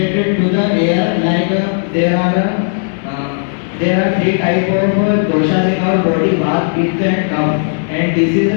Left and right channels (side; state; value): right; silent; digital silence